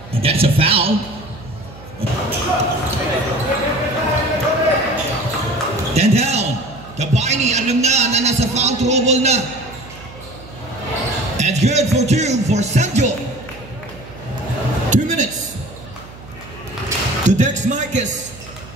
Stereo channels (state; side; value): noise; right; hum, 18 dB below the sound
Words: And that's a foul. 10 down. Gabayni, alam na nasa foul trouble na. And good for 2 for Sanjo. 2 minutes. To Dex Marquez.